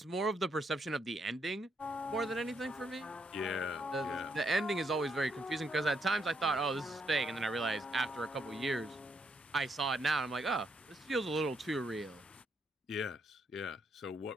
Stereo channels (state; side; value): normal; both; correlation 0.76